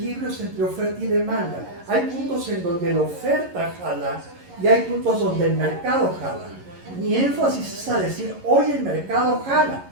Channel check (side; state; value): left; late; 11 ms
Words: entre oferta y demanda. Hay puntos en donde la oferta jala y hay puntos donde el mercado jala. Mi énfasis es a decir, hoy el mercado jala